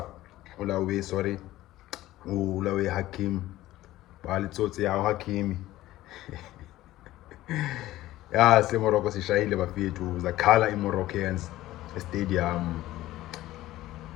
ulawe Hakim balitsotsi yawo Hakimi ya se Morocco sishayile bafethu zakhala i-Moroccans stadium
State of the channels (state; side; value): quieter; right; 15.8 dB